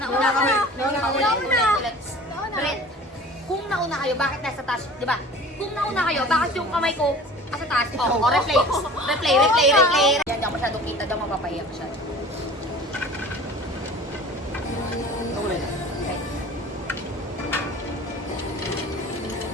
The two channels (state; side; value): normal; both; correlation 0.43